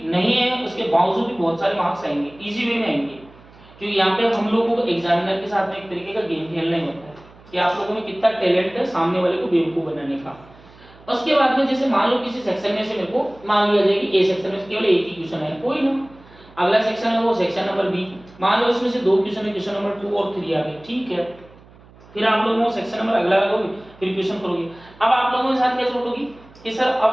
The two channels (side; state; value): right; noise; hum, 24 dB below the sound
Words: नहीं है उसके बावजूद भी बहुत सारे मार्क्स आएंगे, इजी वे में आएंगे, क्योंकि यहाँ पे हम लोगों को एग्जामिनर के साथ में एक तरीके का गेम खेलना ही होता है कि आप लोगों में कितना टैलेंट है सामने वाले को बेवकूफ बनाने का। उसके बाद में जैसे मान लो किसी सेक्शन में से मेरे को मान लिया जाए कि ए सेक्शन में से केवल एक ही क्वेश्चन है, कोई ना, अगला सेक्शन है वो सेक्शन नंबर बी, मान लो इसमें से 2 क्वेश्चन है, क्वेश्चन नंबर 2 और 3 आ गए, ठीक है, फिर आप लोगों को सेक्शन नंबर अगला लगाओगे, फिर क्वेश्चन करोगे। अब आप लोगों के साथ क्या चोट होगी कि सर अब